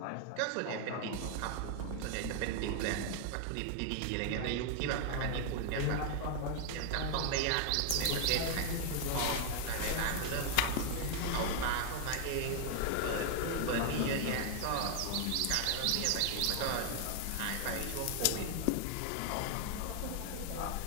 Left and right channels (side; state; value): both; different; correlation 0.00